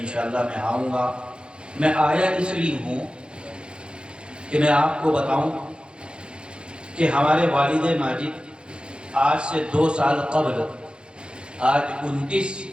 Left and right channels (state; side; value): late; left; 0.053 ms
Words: میں آؤں گا۔ میں آیا اس لیے ہوں کہ میں آپ کو بتاؤں کہ ہمارے والد ماجد آج سے 2 سال قبل، آج 29